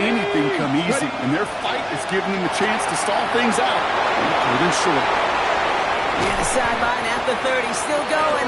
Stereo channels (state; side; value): identical; both; correlation 1.00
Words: come easy. And their fight is giving them a chance to stall things out. Third and short. And the sideline at the 30, still going.